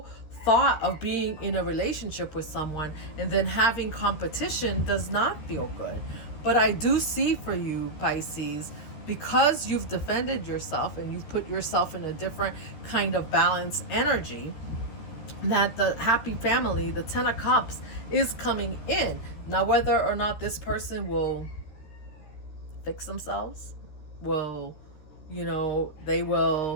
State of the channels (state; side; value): late; right; 13 ms